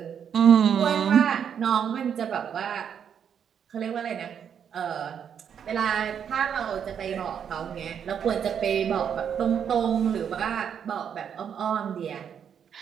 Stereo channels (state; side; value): quieter; left; 8.1 dB